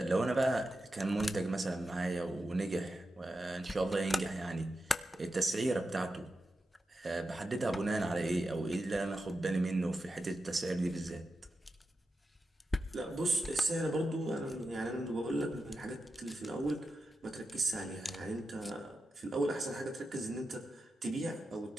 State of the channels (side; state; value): both; normal; correlation 0.89